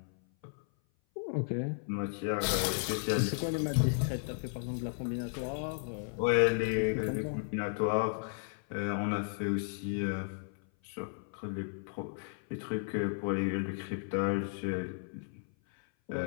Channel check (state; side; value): silent; right; 55 dB below the other